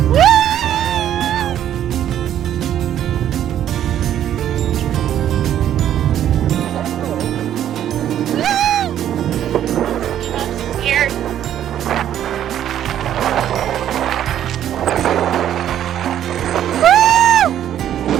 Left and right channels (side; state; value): left; quieter; 10.9 dB